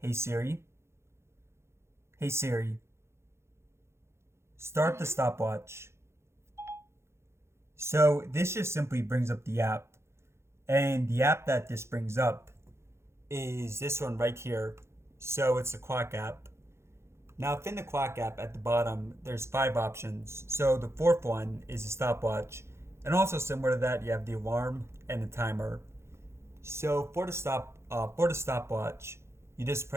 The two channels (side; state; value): left; late; 0.13 ms